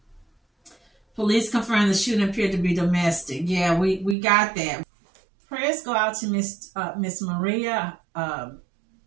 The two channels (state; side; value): drops out; left; at 4.2 s